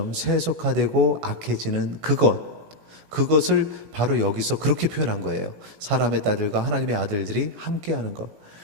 세속화되고 악해지는 그것을 바로 여기서 그렇게 표현한 거예요. 사람의 딸들과 하나님의 아들들이 함께하는 것.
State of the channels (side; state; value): left; late; 18 ms